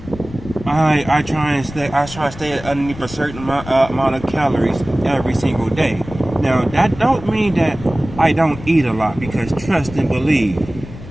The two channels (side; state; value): left; noise; rumble, 14 dB below the sound